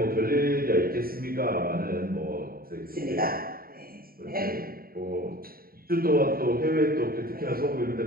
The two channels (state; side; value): late; left; 0.43 ms